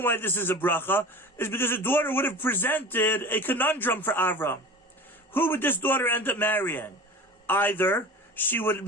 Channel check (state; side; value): normal; both; correlation 0.36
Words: why this is a bracha is because a daughter would have presented a conundrum for Avram. Who would this daughter end up marrying? Either she would